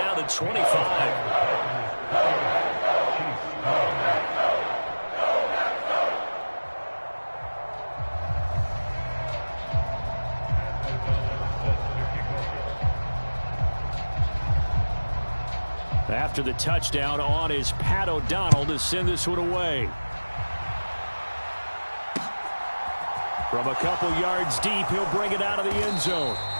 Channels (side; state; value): both; inverted; correlation -1.00